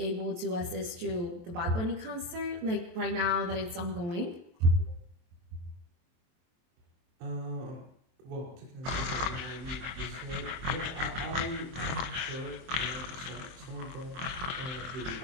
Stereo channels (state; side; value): late; left; 23 ms